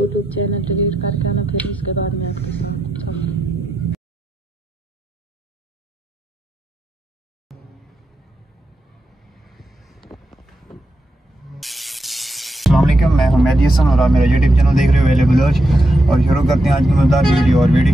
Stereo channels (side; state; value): both; normal; correlation 0.85